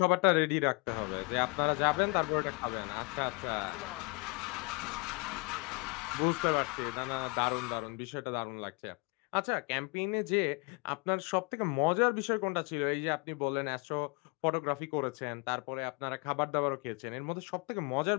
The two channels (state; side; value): quieter; right; 30.6 dB